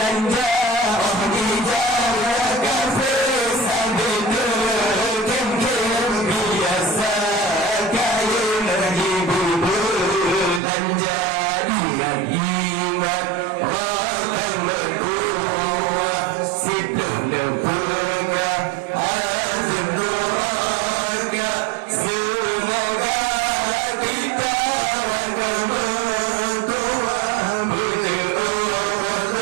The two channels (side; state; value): left; drops out; at 10.6 s